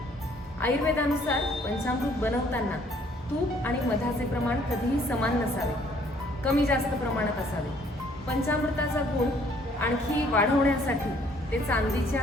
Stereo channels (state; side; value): normal; both; correlation 0.61